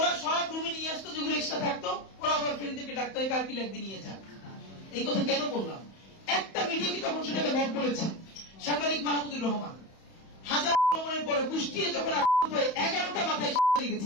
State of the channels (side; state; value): right; late; 31 ms